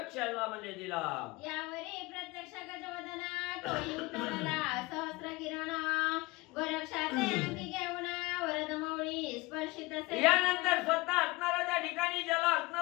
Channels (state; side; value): quieter; right; 22.3 dB